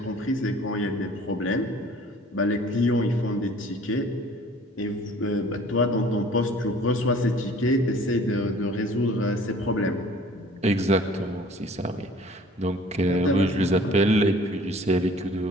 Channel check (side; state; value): both; normal; correlation 0.51